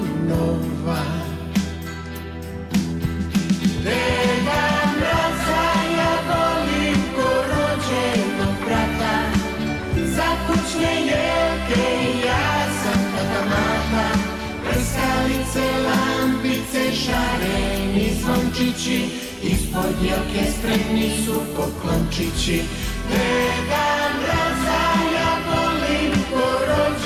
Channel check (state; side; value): identical; both; correlation 1.00